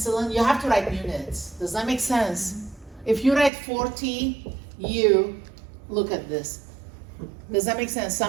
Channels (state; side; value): drops out; left; at 3.5 s